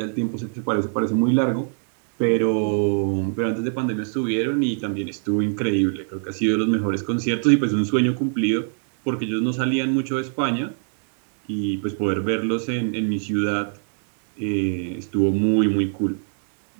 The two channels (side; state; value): left; silent; digital silence